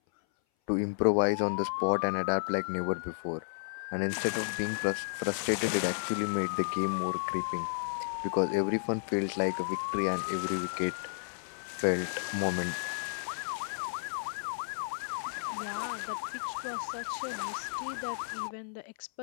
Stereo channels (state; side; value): silent; right; 56 dB below the other